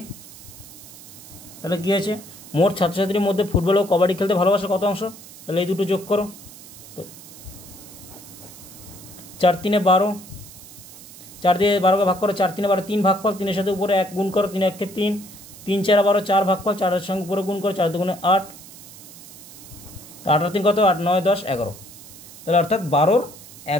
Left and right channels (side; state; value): right; noise; hiss, 18 dB below the sound